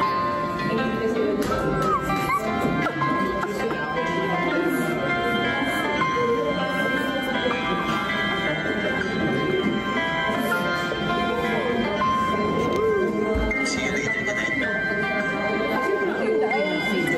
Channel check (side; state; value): both; identical; correlation 1.00